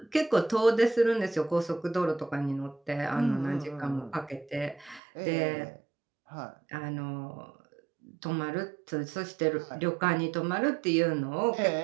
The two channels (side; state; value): left; drops out; at 5.0 s